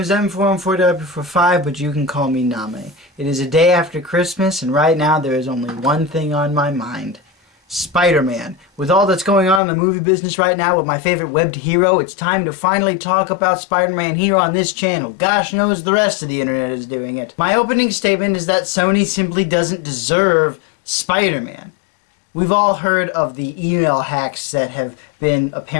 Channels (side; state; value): right; drops out; at 9.6 s